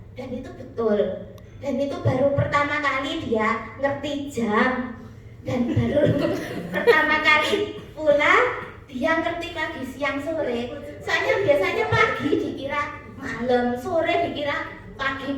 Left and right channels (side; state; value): both; identical; correlation 1.00